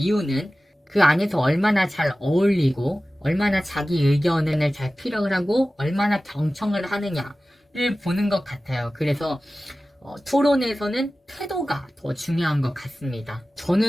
그 안에서 얼마나 잘 어울리고 얼마나 자기 의견을 잘 피력을 하고 얼마나 경청을 하느냐를 보는 것 같아요. 그래서 토론에서는 태도가 더 중요한 것 같습니다.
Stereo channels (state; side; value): normal; both; correlation 0.96